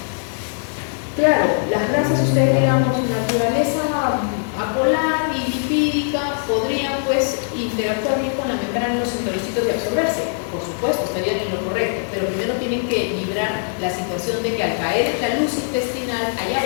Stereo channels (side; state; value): right; silent; digital silence